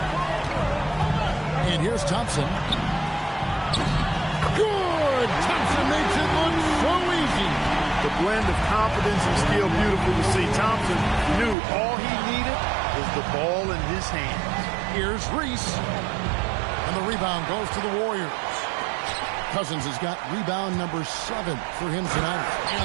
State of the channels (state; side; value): drops out; left; at 11.6 s